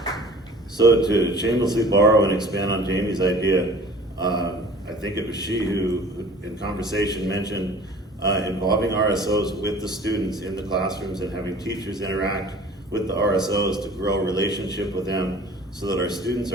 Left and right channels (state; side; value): normal; both; correlation 0.46